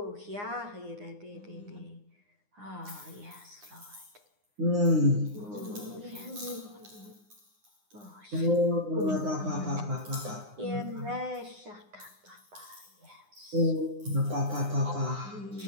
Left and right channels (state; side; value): late; left; 9.7 ms